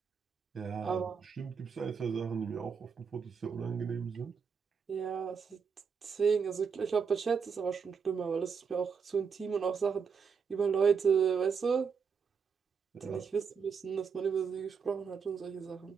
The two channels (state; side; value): quieter; left; 6.1 dB